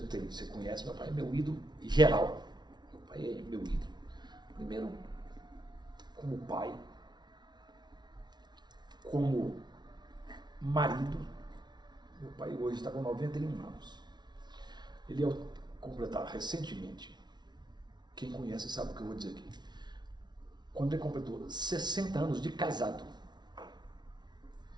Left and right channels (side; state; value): left; late; 0.20 ms